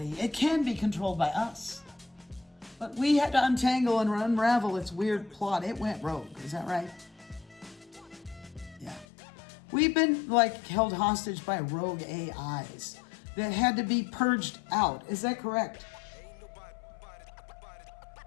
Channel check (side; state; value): right; drops out; at 9.1 s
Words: it can be controlled by us. But we had to untangle and unravel its weird plot. It went rogue. Is that right? Yeah. We've been held hostage by rogue AIs that had to be purged out. Is that correct?